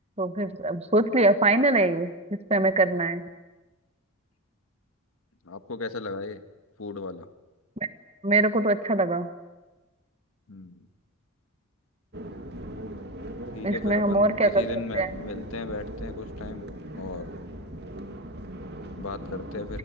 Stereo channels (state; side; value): normal; both; correlation 0.15